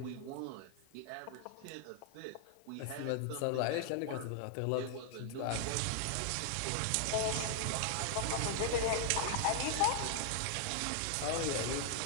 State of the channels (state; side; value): different; both; correlation 0.00